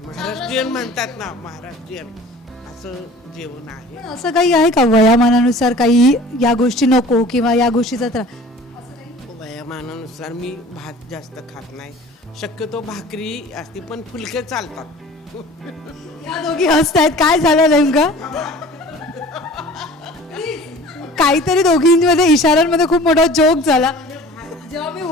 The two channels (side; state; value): both; normal; correlation 0.45